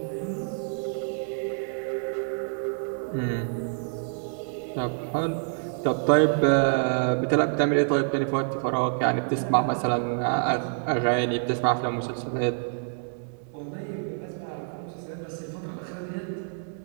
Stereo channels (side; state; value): left; silent; digital silence